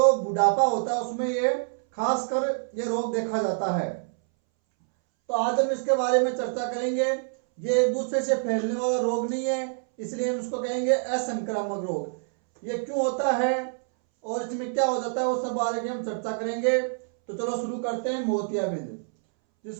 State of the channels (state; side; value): silent; left; 61 dB below the other